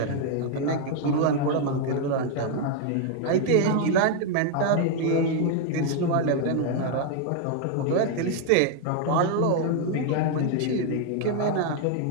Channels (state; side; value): different; both; correlation 0.00